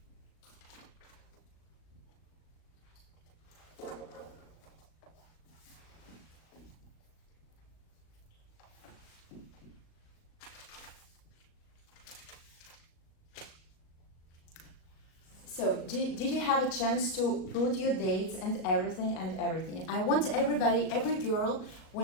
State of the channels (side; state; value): right; late; 37 ms